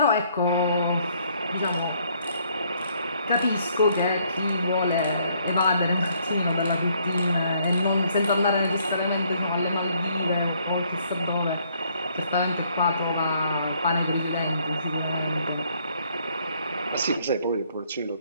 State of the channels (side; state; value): both; inverted; correlation -0.67